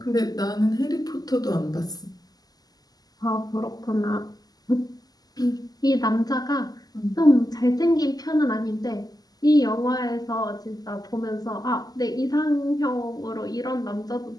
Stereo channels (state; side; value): late; right; 0.18 ms